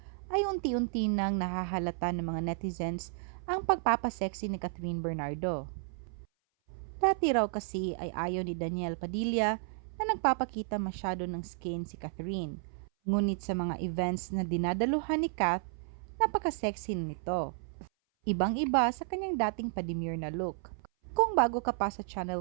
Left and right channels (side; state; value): left; silent; 56 dB below the other